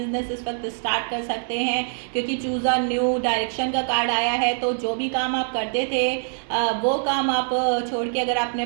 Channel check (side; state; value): left; silent; digital silence